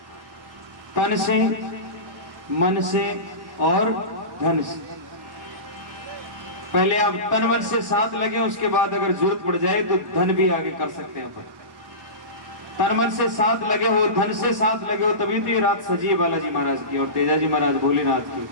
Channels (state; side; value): late; left; 1.2 ms